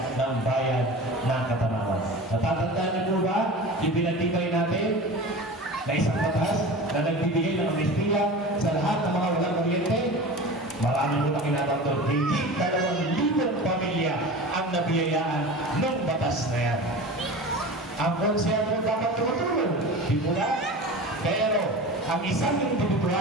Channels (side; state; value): both; normal; correlation 0.33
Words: ng bayan ng Katanawan. Natatandaan niyo po ba yung pinatibay natin na isang batas na nagbibigay ng amnestiya sa lahat ng mga walang kuryente? Maraming po nakinabang doon. Higit 2,000 pamilya ang nabiyayaan ng batas na yan. Ang konsehal mo dapat tumutulong. Di po na? Pero, ang isang